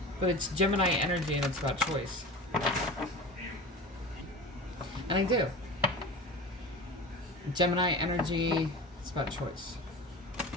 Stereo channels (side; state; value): both; normal; correlation 0.33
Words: But it's Gemini energy, and it's about choice. And I do. Gemini energy, it's about choice.